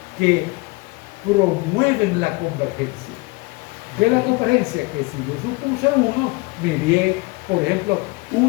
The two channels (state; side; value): quieter; right; 24.8 dB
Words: que promueven la convergencia. De la convergencia, que si yo supuse 1, me di, por ejemplo,